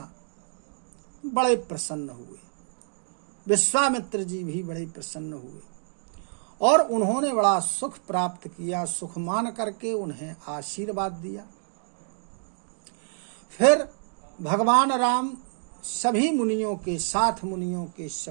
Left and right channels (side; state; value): left; silent; digital silence